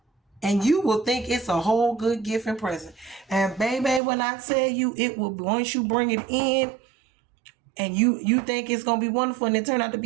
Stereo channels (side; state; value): left; drops out; at 4.0 s